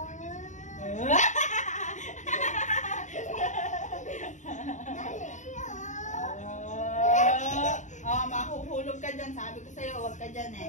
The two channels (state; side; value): late; right; 0.35 ms